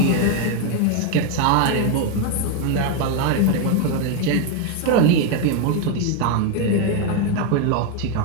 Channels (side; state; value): both; different; correlation 0.01